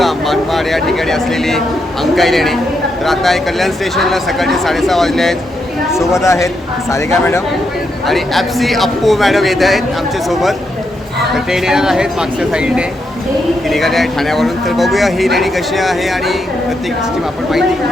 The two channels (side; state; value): both; normal; correlation 0.81